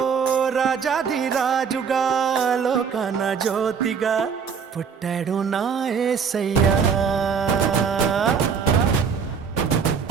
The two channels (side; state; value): left; quieter; 6.4 dB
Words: రాజాది రాజుగా లోకన జ్యోతిగా పుట్టాడు నా యేసయ్యా.